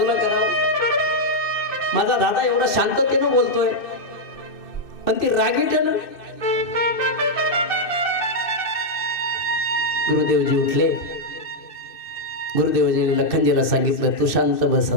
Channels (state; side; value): late; right; 2.6 ms